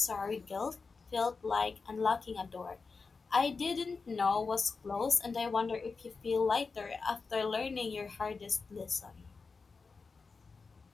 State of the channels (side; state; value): right; quieter; 4.6 dB